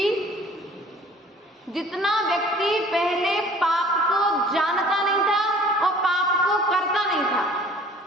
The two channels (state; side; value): normal; both; correlation 0.51